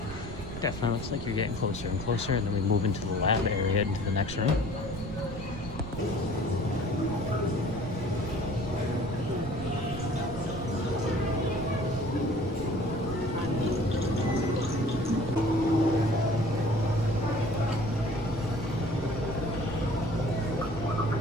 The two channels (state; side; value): noise; right; rumble, 11 dB below the sound